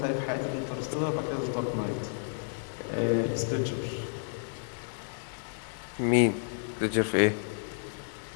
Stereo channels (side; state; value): right; silent; digital silence